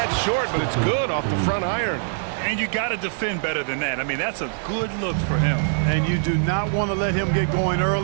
short, but it's good off the front iron. And you got to defend better than that. I mean, that's a good look for him. And you do not want to let him get going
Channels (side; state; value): left; silent; digital silence